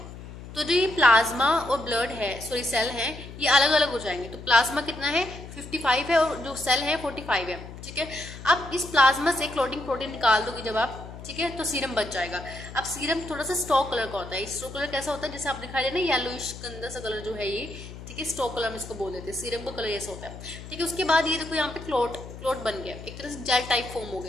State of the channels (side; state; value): left; noise; hum, 13 dB below the sound